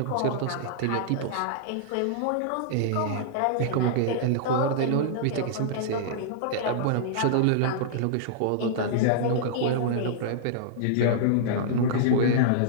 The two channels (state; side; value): different; both; correlation -0.02